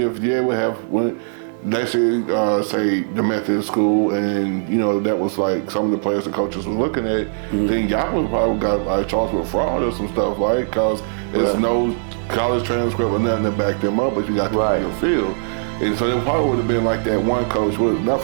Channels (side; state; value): left; silent; digital silence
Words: if you would have, let's say the Methodist school, and you know that was like some of the players the coaches was looking at, then y'all would probably got charged with fraud or some stuff, right? Because there's no college transcript or nothing to back them up, but you got to on your field. And so it probably would have been like that one coach, not